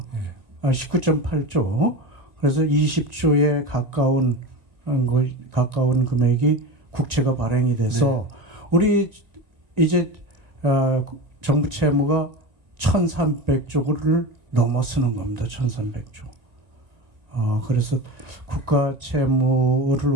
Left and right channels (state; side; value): late; left; 2.0 ms